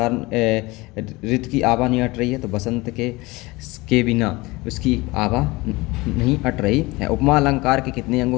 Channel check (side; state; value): right; quieter; 22.3 dB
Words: ऋतु की आभा नहीं अट रही है? तो बसंत के बिना उसकी आभा नहीं अट रही है। उपमा अलंकार के कितने अंग